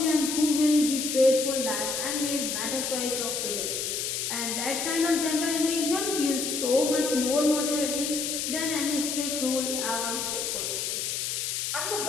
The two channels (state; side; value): noise; left; hiss, 2 dB below the sound